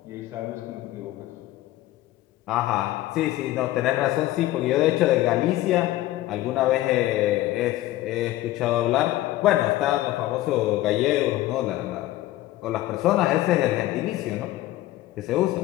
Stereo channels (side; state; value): right; quieter; 15.8 dB